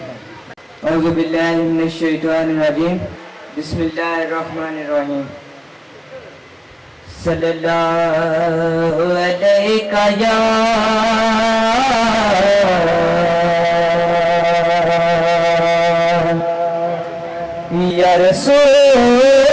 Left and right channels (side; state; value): both; identical; correlation 1.00